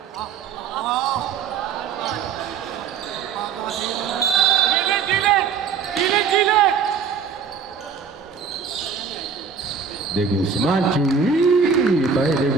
De Guzman, Chewy by De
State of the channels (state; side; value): quieter; left; 6.2 dB